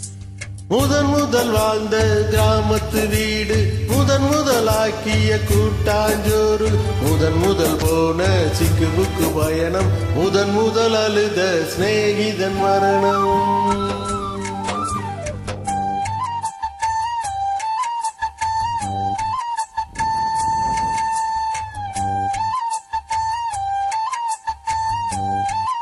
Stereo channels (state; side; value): identical; both; correlation 1.00